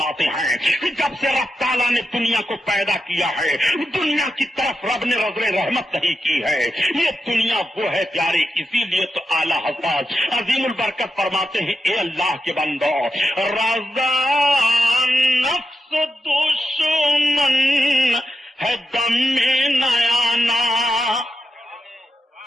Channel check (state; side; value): normal; both; correlation 0.88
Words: ہیں کہ جب سے رب تعالیٰ نے دنیا کو پیدا کیا ہے دنیا کی طرف رب نے نظر رحمت نہیں کی ہے، یہ دنیا وہ ہے پیارے، اسی لیے تو اعلیٰ حضرت عظیم البرکت فرماتے ہیں اے اللہ کے بندو رضا نفس دشمن ہے دم میں نیانا،